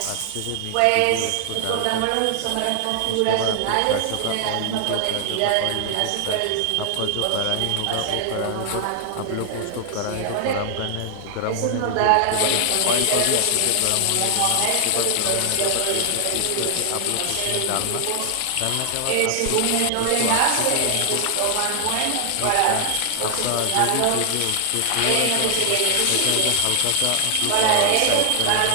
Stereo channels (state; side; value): different; both; correlation 0.00